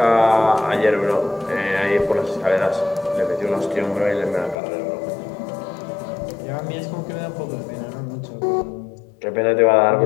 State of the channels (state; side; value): drops out; right; at 4.5 s